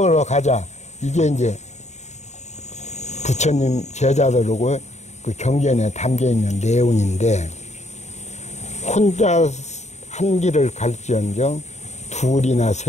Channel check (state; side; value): late; right; 0.33 ms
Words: 가자, 이게 이제 부처님 제자들하고 그 경전에 담겨 있는 내용인데, 혼자 한 길을 갈지언정 둘이나